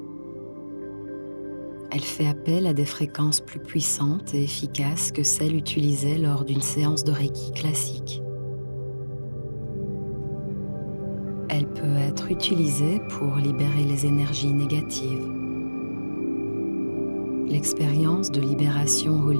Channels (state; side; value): inverted; both; correlation -1.00